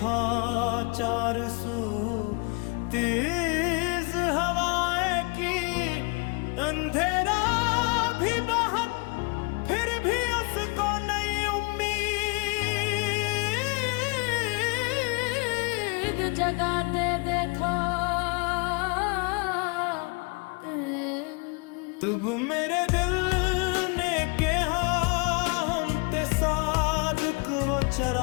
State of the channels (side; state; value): right; quieter; 31.6 dB